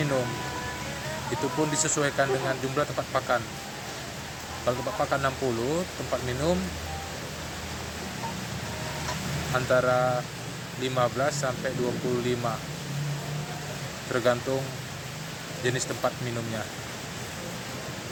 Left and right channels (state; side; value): identical; both; correlation 1.00